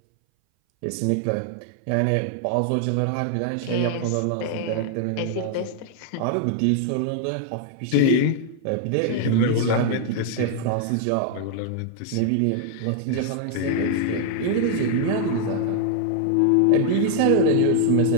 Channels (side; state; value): both; different; correlation 0.00